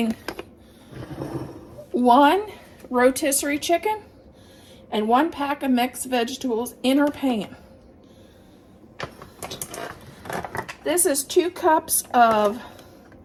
1 rotisserie chicken and 1 pack of mixed vegetables in our pan. This is 2 cups of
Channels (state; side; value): identical; both; correlation 1.00